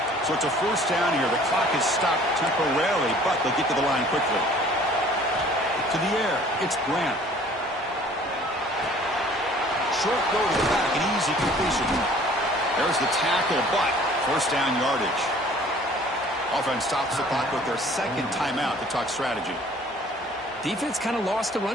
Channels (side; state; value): both; normal; correlation 0.53